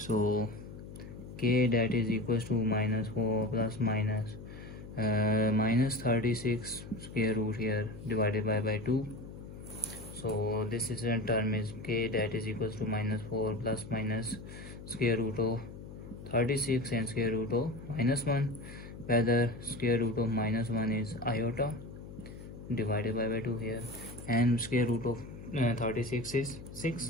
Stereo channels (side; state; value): left; noise; hum, 13 dB below the sound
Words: k, that is equals to minus 4 plus minus minus 36 square root here divided by 2. So this is a term is k, that is equals to minus 4 plus minus square root of 36 and square root of minus 1, whether square root of minus 1 is iota divided by 2 here, and square root of 36 is